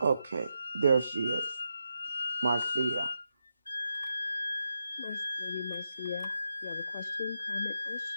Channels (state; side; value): inverted; both; correlation -0.85